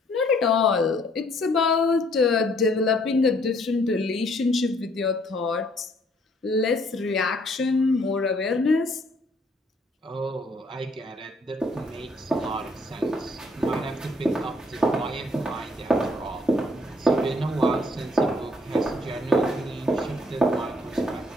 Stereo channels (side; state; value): both; normal; correlation 0.64